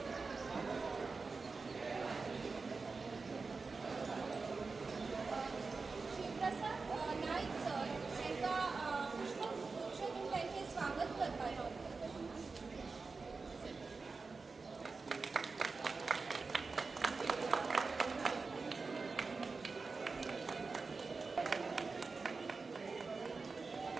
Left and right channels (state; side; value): quieter; left; 4.3 dB